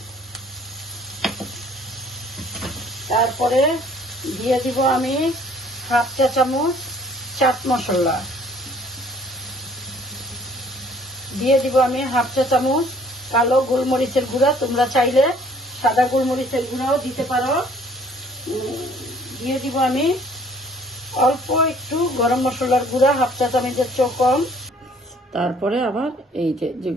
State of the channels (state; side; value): normal; both; correlation 0.57